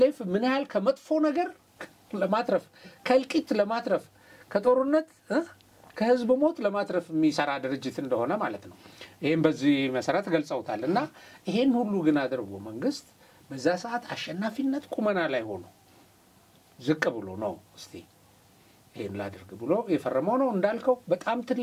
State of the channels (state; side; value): identical; both; correlation 1.00